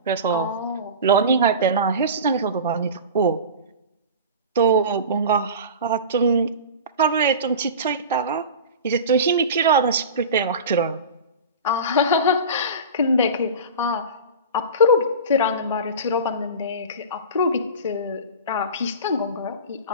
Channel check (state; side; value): inverted; both; correlation -0.32